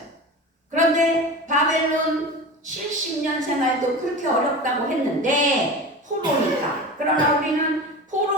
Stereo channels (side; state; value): both; normal; correlation 0.30